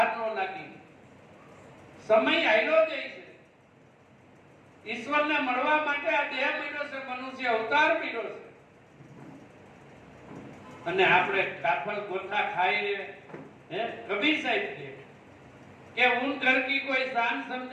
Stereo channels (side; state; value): both; identical; correlation 1.00